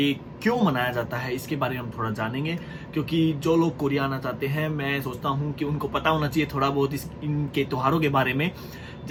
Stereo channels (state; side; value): identical; both; correlation 1.00